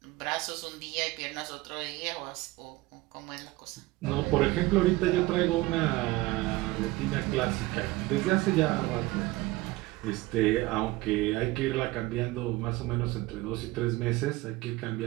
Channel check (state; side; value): quieter; left; 19.6 dB